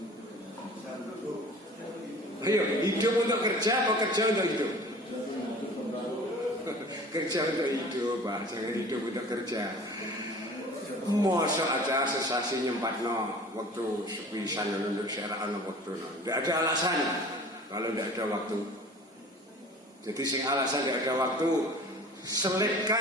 Ayo, hidup untuk kerja apa kerja untuk hidup? Kerja untuk hidup, Pak. Jangan hidup untuk kerja. Masa aja sesasi nyempatno waktu sepisan untuk syara'an waktu. Tidak ada alasan kalau tidak ada waktu. Jadi sing alasan tidak ada waktu,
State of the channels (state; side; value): normal; both; correlation 0.44